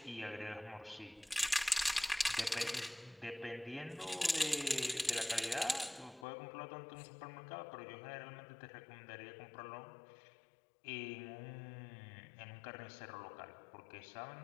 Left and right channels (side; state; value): right; drops out; at 6.2 s